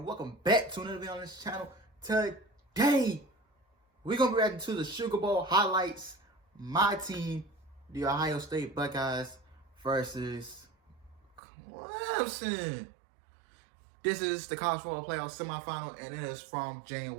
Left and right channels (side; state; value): left; drops out; at 11.4 s